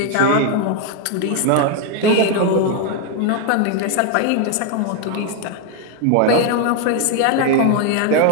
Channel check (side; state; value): both; different; correlation 0.01